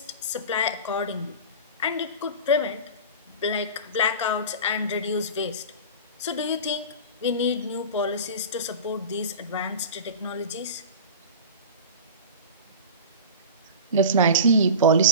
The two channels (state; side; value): inverted; both; correlation -0.32